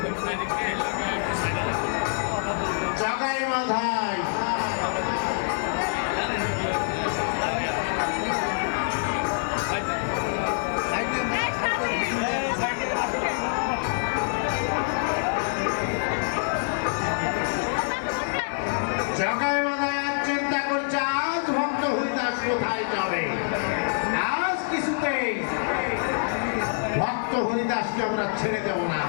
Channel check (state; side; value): silent; right; digital silence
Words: জগাই মাধায় জগাই মাধায় চিন্তা করছে আজ ভক্ত হরিদাস কোথায় যাবে। আজ কিছুতেই ভক্ত হরিদাসকে আমরা ছেড়ে দেব না।